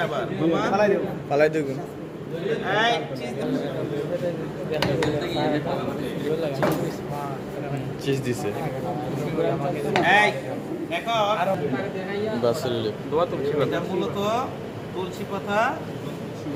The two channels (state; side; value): identical; both; correlation 1.00